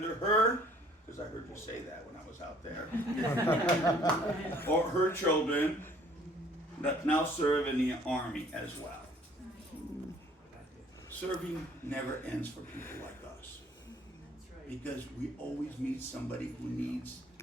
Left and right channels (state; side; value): normal; both; correlation 0.57